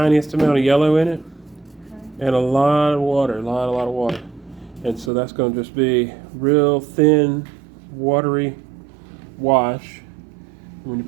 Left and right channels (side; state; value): left; drops out; at 5.1 s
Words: amount of yellow in it, and a lot of water, a lot of water. And so that's going to just be real thin, watery wash. When you